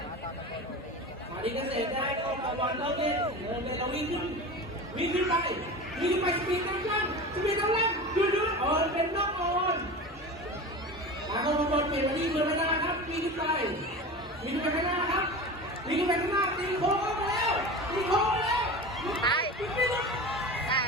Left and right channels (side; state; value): both; normal; correlation 0.31